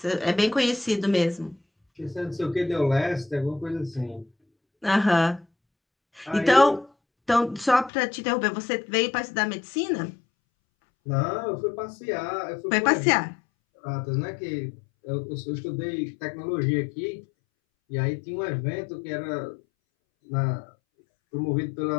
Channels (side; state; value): right; drops out; at 7.9 s